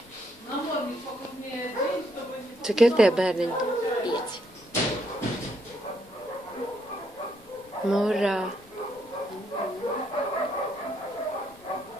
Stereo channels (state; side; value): noise; left; rumble, 28 dB below the sound